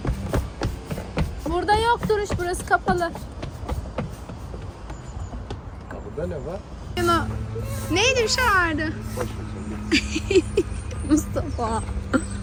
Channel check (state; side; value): identical; both; correlation 1.00